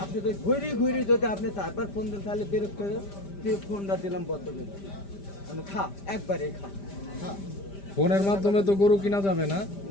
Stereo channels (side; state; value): right; late; 5.1 ms